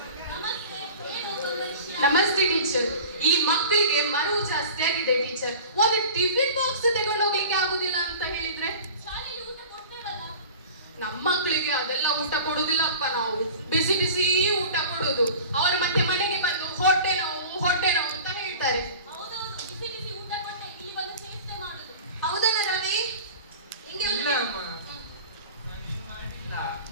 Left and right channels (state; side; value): inverted; both; correlation -0.40